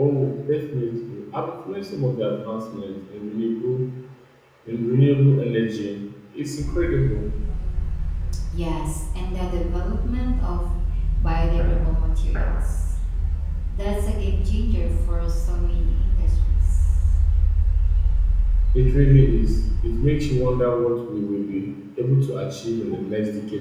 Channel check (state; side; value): identical; both; correlation 1.00